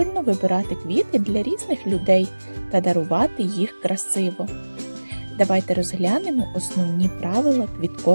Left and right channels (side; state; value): both; inverted; correlation -1.00